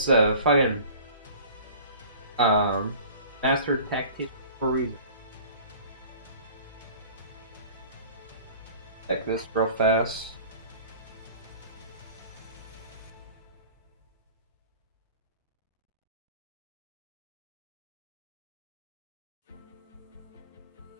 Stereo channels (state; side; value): inverted; both; correlation -0.45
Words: fucking um, master tactic for a reason. Check this real fast.